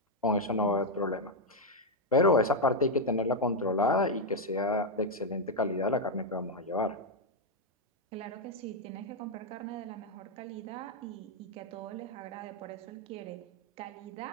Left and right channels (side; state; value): both; normal; correlation 0.01